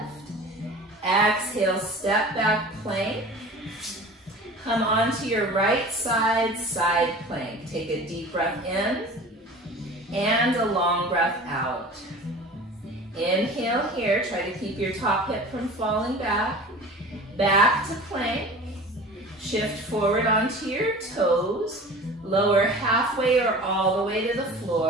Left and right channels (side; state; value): both; normal; correlation 0.40